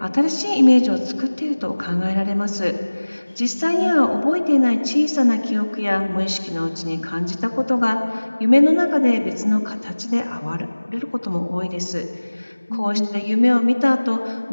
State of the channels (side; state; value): both; inverted; correlation -1.00